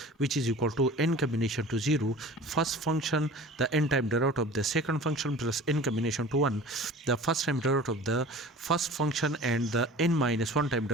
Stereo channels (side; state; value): both; normal; correlation 0.41